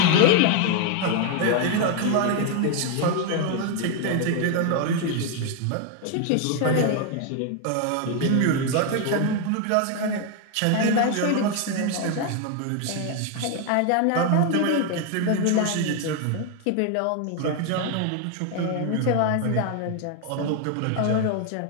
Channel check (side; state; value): both; different; correlation 0.01